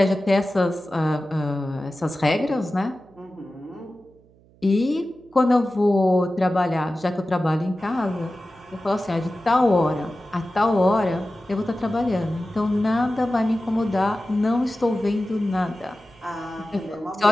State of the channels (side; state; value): right; noise; hum, 29 dB below the sound